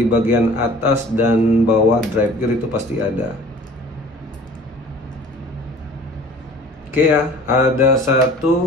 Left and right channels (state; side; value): normal; both; correlation 0.47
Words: bagian atas dan bawah drive gear itu pasti ada. Oke ya, ada 1